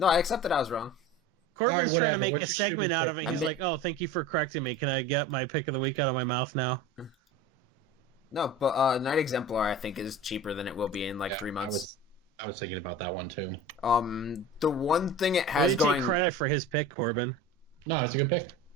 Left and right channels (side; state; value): both; normal; correlation 0.35